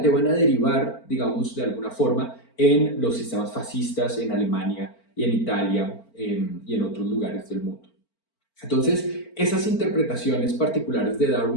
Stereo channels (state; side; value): late; right; 4.4 ms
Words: van a derivar, digamos, de alguna forma en los sistemas fascistas en Alemania y en Italia y en otros lugares del mundo. Entonces, esas interpretaciones particulares de